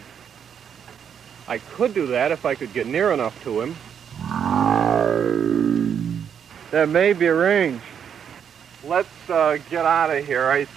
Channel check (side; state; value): left; quieter; 8.0 dB